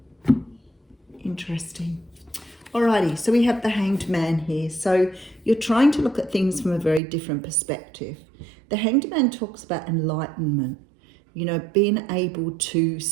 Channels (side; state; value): left; drops out; at 7.0 s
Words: Interesting. Alrighty, so we have the Hanged Man here. So you're trying to look at things from a very different perspective. The Hanged Man talks about enlightenment, being able to